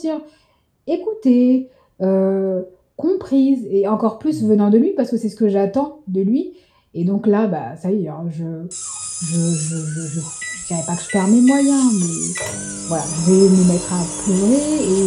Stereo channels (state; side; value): identical; both; correlation 1.00